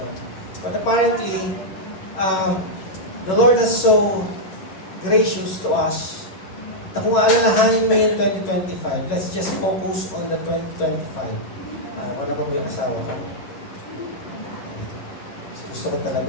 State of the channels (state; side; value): late; right; 11 ms